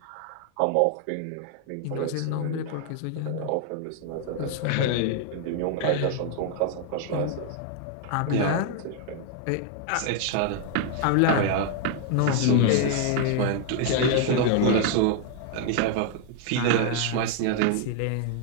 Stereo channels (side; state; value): both; different; correlation 0.00